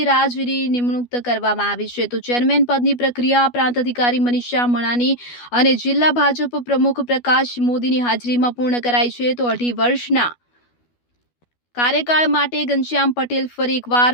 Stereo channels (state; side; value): late; right; 12 ms